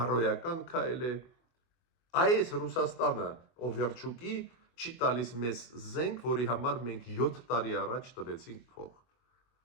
քայլ է։ Այս Ռուսաստանը Օվերչուկի չի տալիս մեզ զենք, որի համար մենք 7 տարի առաջ տվեցինք փող։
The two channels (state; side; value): late; right; 24 ms